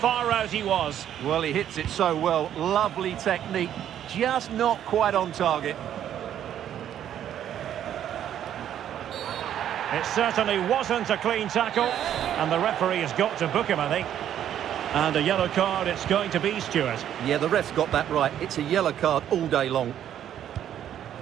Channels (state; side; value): quieter; left; 10.5 dB